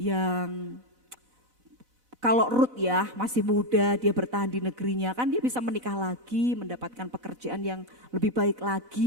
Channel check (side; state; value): left; late; 4.0 ms